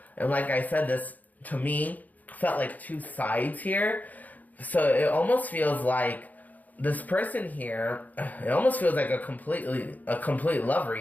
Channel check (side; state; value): right; late; 0.079 ms